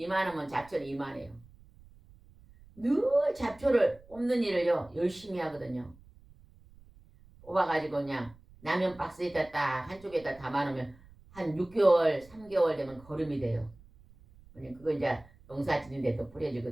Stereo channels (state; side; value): noise; right; rumble, 25 dB below the sound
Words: 잡초는 이만해요. 늘 잡초를 뽑는 일을요 열심히 하거든요. 뽑아가지고 그냥 라면 박스에다 딱 한쪽에다 담아놓으면 한 6개월, 3개월 되면 거름이 돼요. 그거 이제 농사 짓는데 또